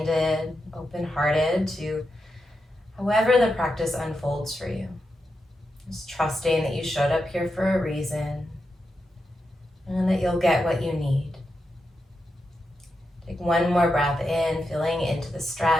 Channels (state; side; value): normal; both; correlation 0.87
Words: open-hearted to however the practice unfolds for you. Just trusting that you showed up here for a reason and that you'll get what you need. Take one more breath in, feeling into the